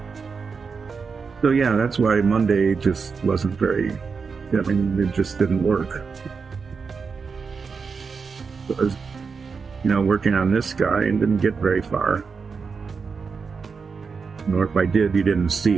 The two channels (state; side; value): quieter; left; 5.3 dB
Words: So yeah, that's why Monday just wasn't very, I mean, it just didn't work. So I was, you know, working on this guy and didn't get very far. Or if I did, you didn't